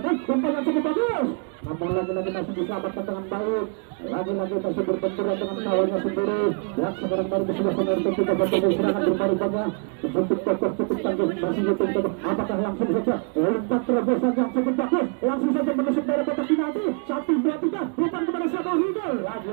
umpan yang cukup bagus. Namun lagi-lagi masih diselamatkan dengan baik. Lagi-lagi masih berbenturan dengan kawannya sendiri. Ya, sekarang baru kesebelasan RT3 bertemu serangan berbaru-baru. Cukup kokoh, cukup tangguh, masih betul-betul. Apakah langsung saja umpan terobosan yang cukup bagus, langsung saja menusuk dari kotak penalti. 1-2-3, umpan kepada Samuel Hidul.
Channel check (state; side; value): quieter; left; 38.5 dB